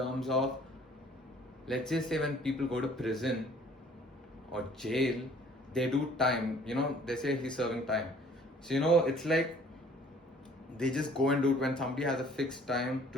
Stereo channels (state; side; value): normal; both; correlation 0.55